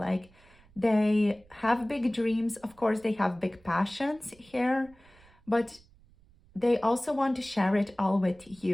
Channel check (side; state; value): right; noise; rumble, 28 dB below the sound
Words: they have big dreams. Of course, they have big passions here, but they also want to share it all with